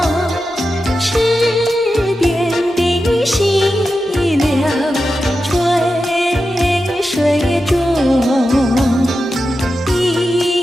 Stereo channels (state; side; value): normal; both; correlation 0.91